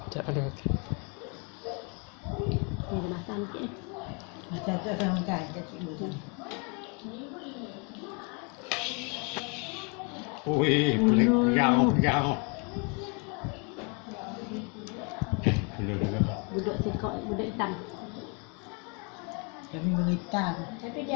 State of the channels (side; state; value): right; quieter; 34.8 dB